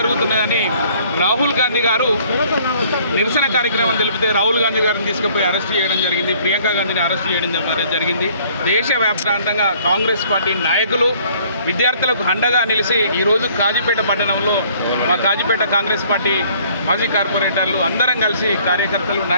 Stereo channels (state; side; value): inverted; both; correlation -0.58